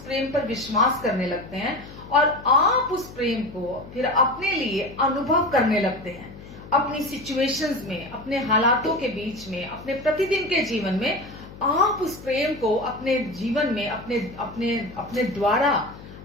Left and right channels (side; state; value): left; noise; hum, 16 dB below the sound